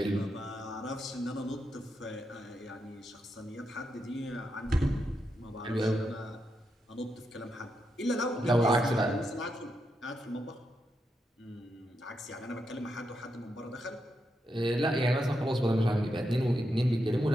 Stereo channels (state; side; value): normal; both; correlation 0.84